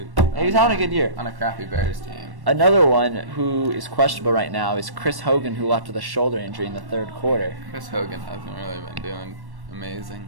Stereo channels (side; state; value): left; late; 1.1 ms